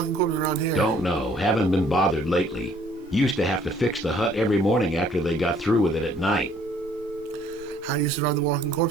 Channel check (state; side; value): normal; both; correlation 0.60